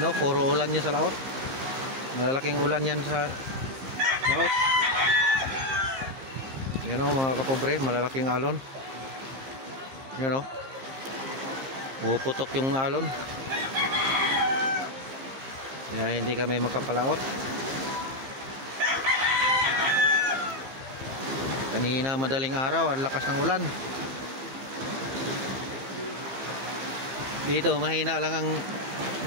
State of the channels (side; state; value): left; late; 15 ms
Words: o, puro ulan yan sa laot. Malalaking ulan yan sa laot. Ayan o mga kapobre, malalaking alon. Ayan o. Puputok yung alon. Kaya hindi kami makapalaot. Kanina madaling araw, ang lakas ng ulan. Dito mahina lang ang